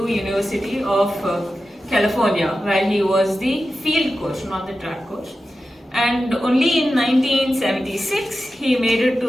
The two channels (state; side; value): normal; both; correlation 0.92